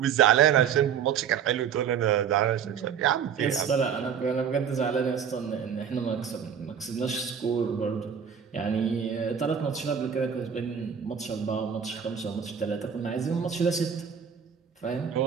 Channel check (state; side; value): quieter; left; 7.7 dB